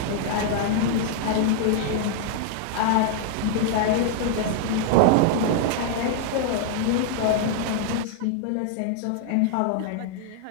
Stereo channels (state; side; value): different; both; correlation -0.01